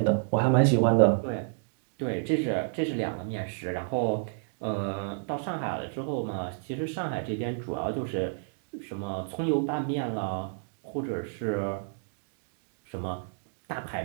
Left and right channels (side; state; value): left; silent; digital silence